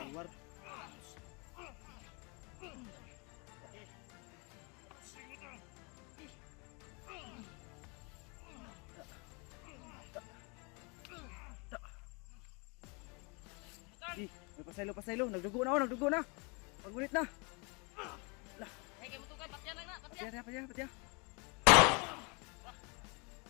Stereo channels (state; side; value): quieter; right; 31.2 dB